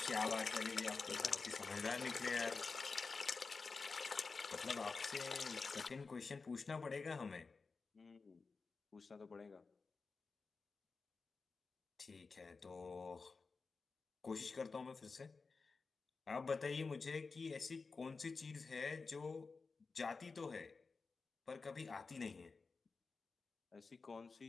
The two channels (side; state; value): right; quieter; 4.4 dB